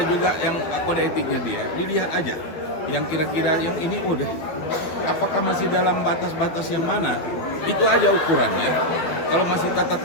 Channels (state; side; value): late; right; 12 ms